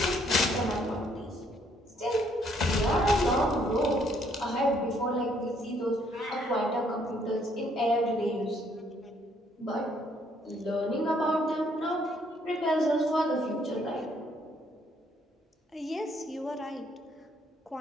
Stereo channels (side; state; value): both; normal; correlation 0.67